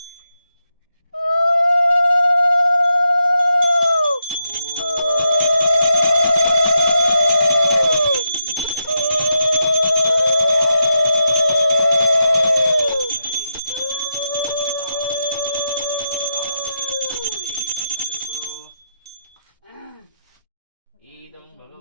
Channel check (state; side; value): inverted; both; correlation -0.84